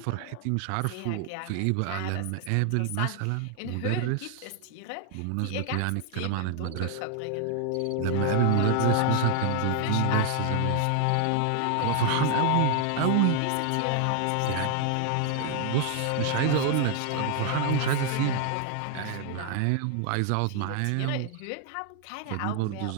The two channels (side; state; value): both; different; correlation 0.00